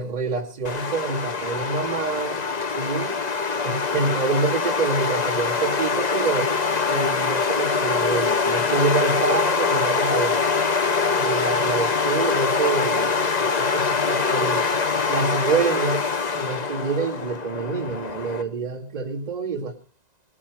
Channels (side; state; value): left; late; 2.0 ms